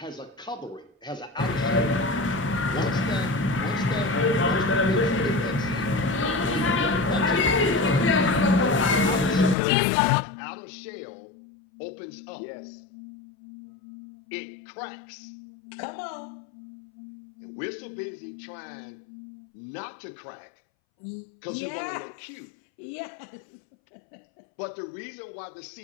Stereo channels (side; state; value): right; drops out; at 9.6 s